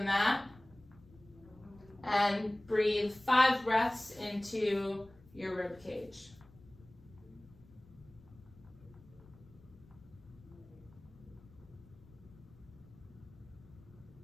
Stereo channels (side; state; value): left; noise; rumble, 23 dB below the sound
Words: mat and breathe 5 breaths into your rib cage.